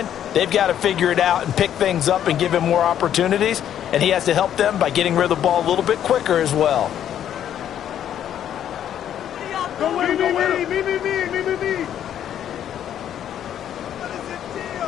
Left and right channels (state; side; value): quieter; right; 10.2 dB